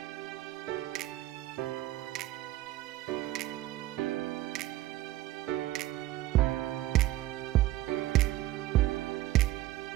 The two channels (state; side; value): quieter; left; 15.6 dB